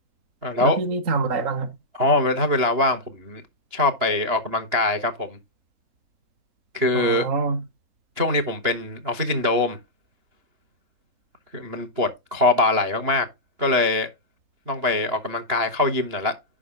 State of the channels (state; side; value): late; left; 3.0 ms